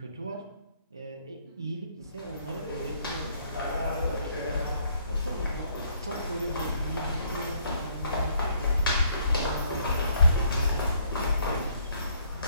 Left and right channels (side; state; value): both; inverted; correlation -0.65